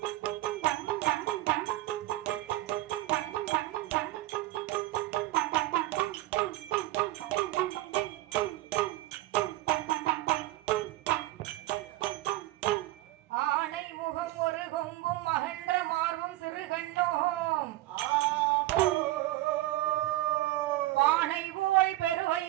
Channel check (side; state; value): left; quieter; 16.8 dB